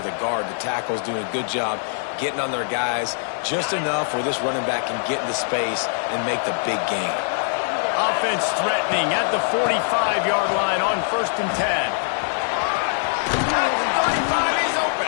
the guard, the tackles doing a good job getting on their guys just enough where this running back can get into space and make the big gain. Offense threatening at the 45-yard line on 1st and 10. At the 35, he's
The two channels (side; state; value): right; silent; digital silence